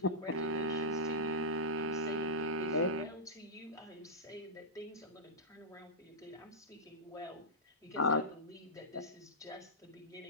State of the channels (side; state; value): both; normal; correlation -0.11